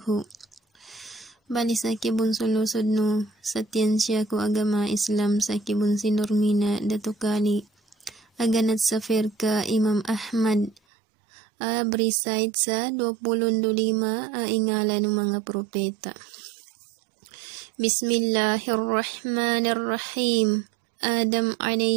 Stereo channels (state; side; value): drops out; left; at 10.8 s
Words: Bali sa kibun sulusod no sa tiyensya ko agama Islam sa kibun sinurmina dato kali aganat sa firka Imam Ahmad briside sa 25 ingala ng mga propeta. Bismillahirrahmanirrahim. Adam